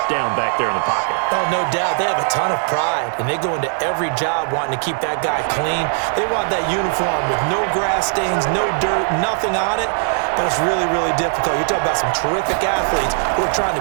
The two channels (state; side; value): silent; left; 65 dB below the other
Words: down back there in the pocket. Oh, no doubt. They have a ton of pride, and they go into every job wanting to keep that guy clean. They want that uniform with no grass stains, no dirt, nothing on it, but it's really, really difficult. You're talking about some terrific athletes who are trying